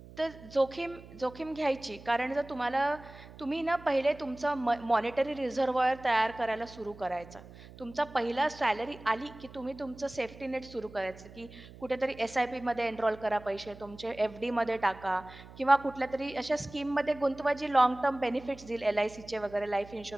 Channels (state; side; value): noise; right; hum, 18 dB below the sound